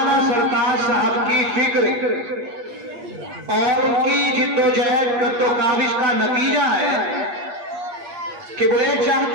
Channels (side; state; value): left; late; 8.4 ms